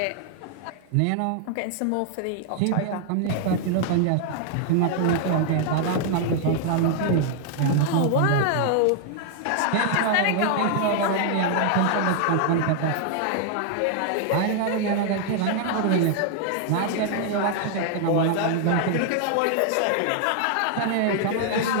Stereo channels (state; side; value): different; both; correlation 0.00